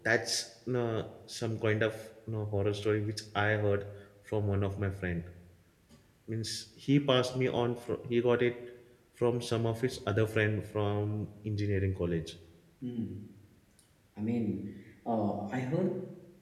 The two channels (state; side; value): identical; both; correlation 1.00